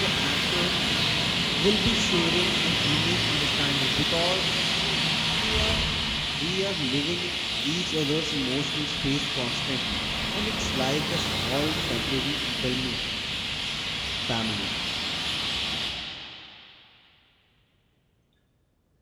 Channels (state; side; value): identical; both; correlation 1.00